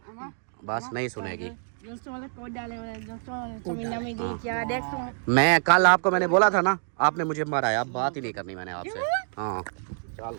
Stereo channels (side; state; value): left; silent; digital silence